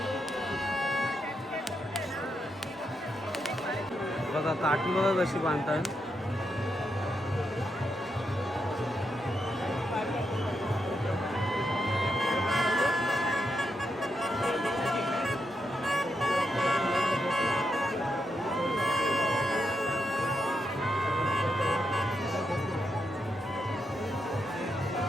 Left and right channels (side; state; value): both; normal; correlation 0.83